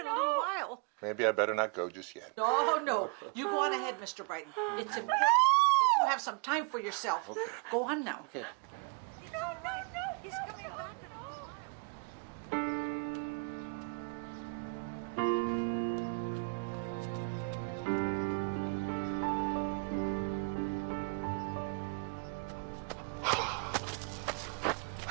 a little while. Maybe I better not go just yet. No. You go on ahead, Mr. Brighton. It's important that you have some time for yourself. Okay. Go on now. Okay. It's all right. He's coming back in a little while.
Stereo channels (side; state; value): left; quieter; 34.4 dB